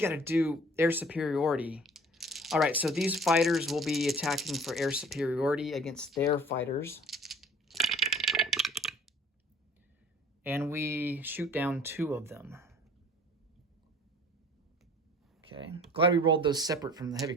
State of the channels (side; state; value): both; normal; correlation 0.50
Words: to do air superiority. All right, so these fighters will be attacking for air superiority against their fighters. And we shoot down 2 of them. Okay, glad we rolled those separate from the heavy